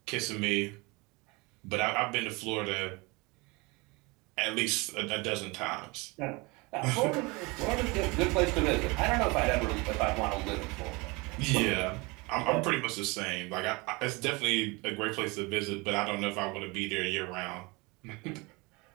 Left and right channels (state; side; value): quieter; left; 26.0 dB